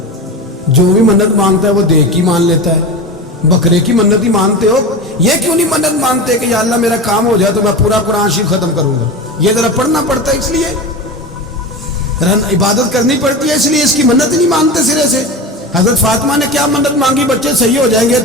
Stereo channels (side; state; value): both; normal; correlation 0.26